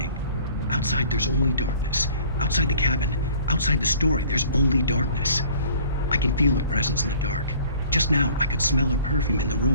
Outside, there's only darkness. Outside the cabin, outside the story, there's only darkness. I can feel her presence in the dark. Just now, I could smell her perfume in the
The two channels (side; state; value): both; inverted; correlation -0.51